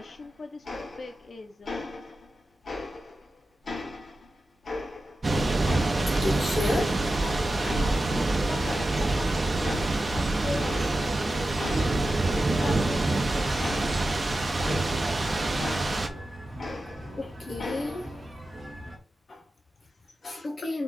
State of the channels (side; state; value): both; normal; correlation 0.92